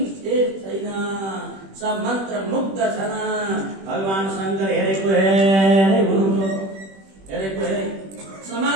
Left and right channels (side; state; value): left; late; 21 ms